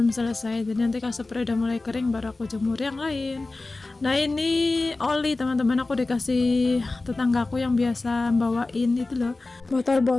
selesai. Jadi nanti kalau spray udah mulai kering baru aku jemur yang lain. Nah ini oli teman-teman, aku dikasih tetanggaku yang biasa bawain itu loh,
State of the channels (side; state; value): right; quieter; 3.3 dB